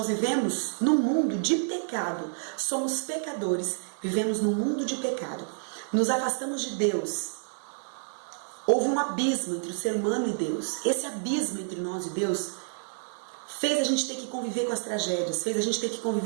vivemos num mundo de pecado. Somos pecadores, vivemos num mundo de pecado. Nos afastamos de Deus. Houve um abismo entre o ser humano e Deus. Esse abismo entre nós e Deus fez a gente ter que conviver com as tragédias, fez a gente ter que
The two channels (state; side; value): silent; left; digital silence